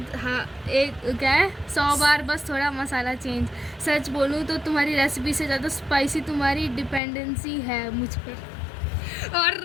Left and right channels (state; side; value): drops out; right; at 7.0 s